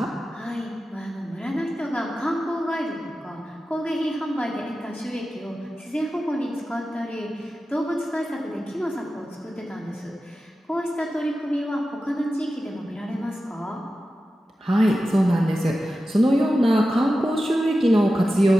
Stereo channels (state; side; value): normal; both; correlation 0.93